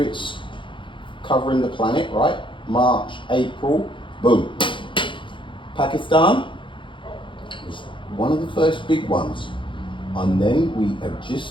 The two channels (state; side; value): late; right; 0.24 ms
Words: its covering the planet, right? March, April, boom. Pakistan was one of the first big ones. And then we have